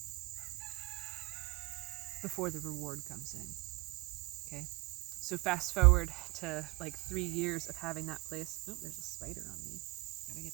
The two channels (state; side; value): quieter; left; 26.3 dB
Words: before the reward comes in. Okay? So fast forward to like 3 years of having that place. Oh, there's a spider on me. Gotta get